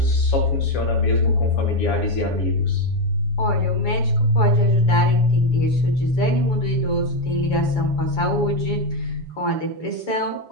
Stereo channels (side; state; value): right; late; 7.1 ms